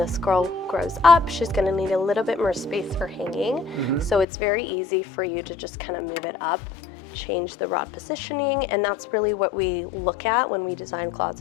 girl grows up, she's going to need a little bit more space for hanging. So it's very easy for you to just kind of move it up, change the rod positioning, and that's really what we look at when we design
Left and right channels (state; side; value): drops out; right; at 4.2 s